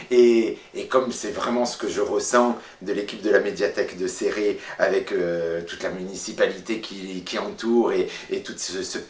Et comme c'est vraiment ce que je ressens de l'équipe de la médiathèque de Céré, avec toute la municipalité qui entoure et tout ce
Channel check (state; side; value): identical; both; correlation 1.00